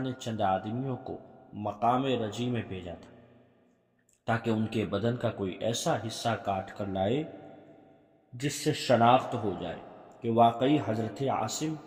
نے چند آدمیوں کو مقام رجی میں بھیجا تھا تاکہ ان کے بدن کا کوئی ایسا حصہ کاٹ کر لائے جس سے شناخت ہو جائے کہ واقعی حضرت عاصم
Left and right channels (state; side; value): identical; both; correlation 1.00